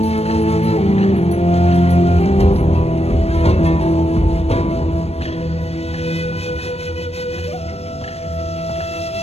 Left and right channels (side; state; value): right; late; 0.30 ms